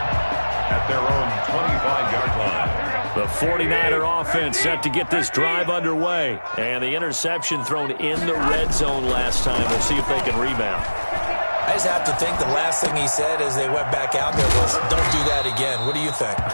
at their own 25-yard line. The 49er offense set to get this drive underway. And the interception thrown in the red zone last time. We'll see if they can rebound. I just have to think the last thing he said as they went back out there was, don't do that again. What do you think?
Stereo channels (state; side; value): inverted; both; correlation -1.00